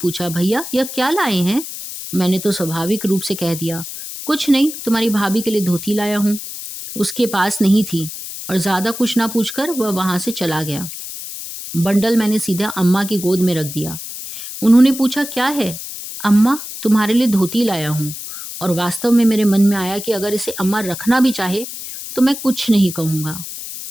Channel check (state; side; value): noise; left; hiss, 9 dB below the sound